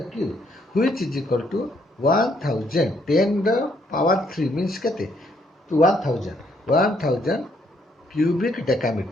cube, which is equal to 1000. 10 the power 3 means kete? 1000. 1000 cubic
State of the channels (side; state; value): both; normal; correlation 0.70